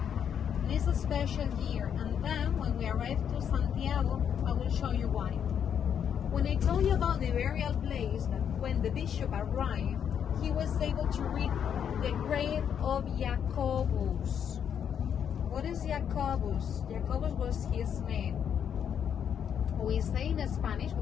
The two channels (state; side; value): quieter; right; 8.3 dB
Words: It's a special year, and then when we arrive to Santiago, I will show you why. When I told you about the burial place, that when the bishop arrived, he was able to read the grave of Jacobus. What is Jacobus? Jacobus was his name. We say in Spanish,